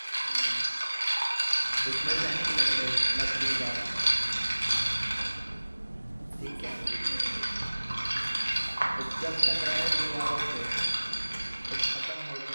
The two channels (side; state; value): both; inverted; correlation -1.00